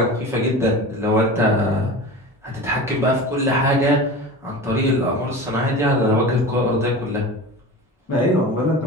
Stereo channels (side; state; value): both; normal; correlation 0.32